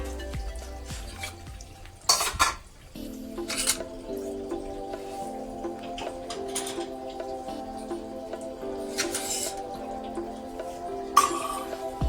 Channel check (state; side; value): identical; both; correlation 1.00